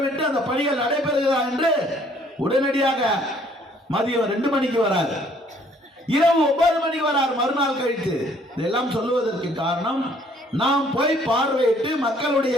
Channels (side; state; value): both; normal; correlation 0.61